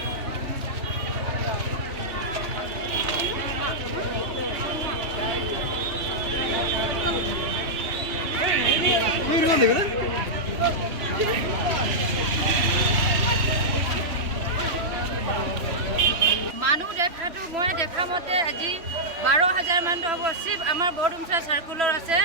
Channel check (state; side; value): late; left; 3.0 ms